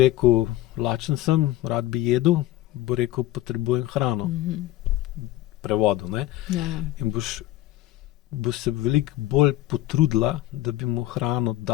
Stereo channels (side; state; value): right; quieter; 15.4 dB